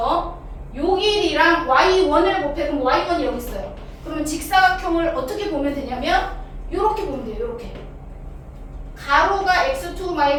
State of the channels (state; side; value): identical; both; correlation 1.00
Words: 요 길이랑 y1을 곱해. 그럼 y1이 여기 있어요. 그러면 직사각형을 어떻게 보면 되냐면 요렇게 보면 돼요. 요렇게. 가로가